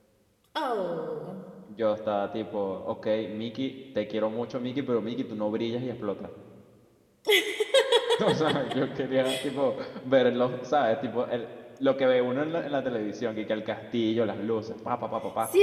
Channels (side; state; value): both; identical; correlation 1.00